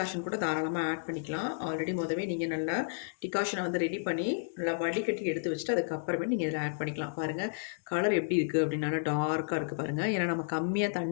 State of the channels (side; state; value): right; silent; digital silence